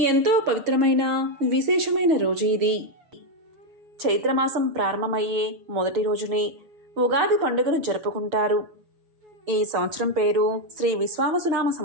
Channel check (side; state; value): left; late; 6.7 ms